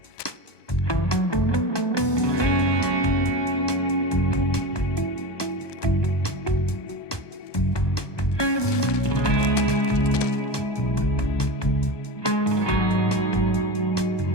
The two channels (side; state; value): right; late; 1.2 ms